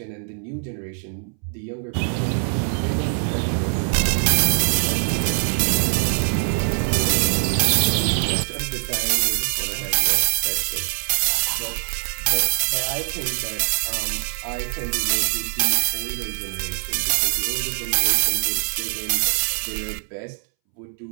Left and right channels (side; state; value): left; silent; 64 dB below the other